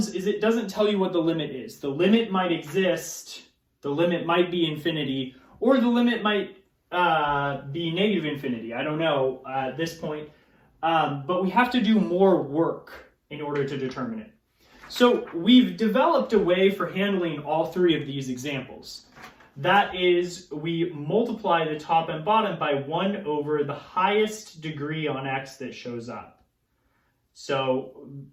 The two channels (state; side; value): identical; both; correlation 1.00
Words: is it doesn't tell you what the limit is. The limit might exist, the limit might be infinity, or the limit might be negative infinity. I don't know at this point, but we have to do more work in order to determine it. So we've developed a way for handling all three of these examples. That is, we multiply the top and bottom by 1 over the highest degree on x that shows up. So